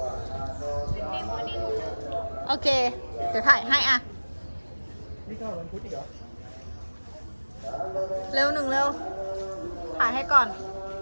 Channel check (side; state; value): both; inverted; correlation -1.00